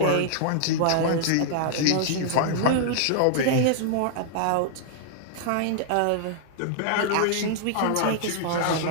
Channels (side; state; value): both; different; correlation -0.01